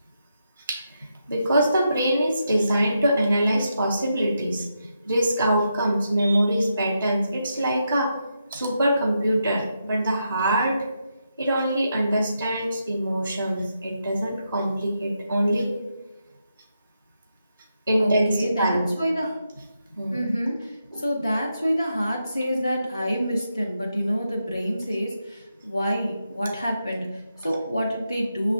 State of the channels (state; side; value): inverted; both; correlation -0.84